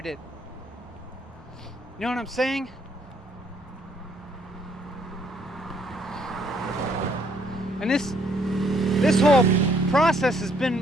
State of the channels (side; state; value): both; normal; correlation 0.67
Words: it. You know what I'm saying? And this whole process has